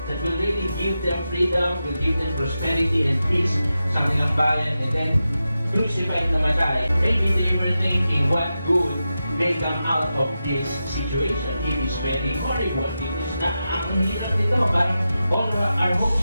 that will really give them freedom, will give them prosperity and peace sa kanilang bayan, and then crucified na namatay. Maybe they were thinking what good may come out of this situation. It is very horrible. It is not ang hirap nito. Parang all our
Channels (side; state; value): both; inverted; correlation -0.91